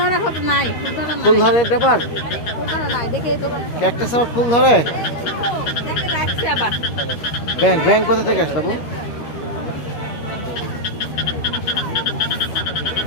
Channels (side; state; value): right; late; 13 ms